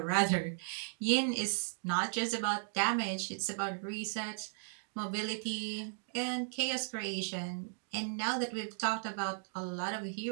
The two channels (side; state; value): left; silent; 54 dB below the other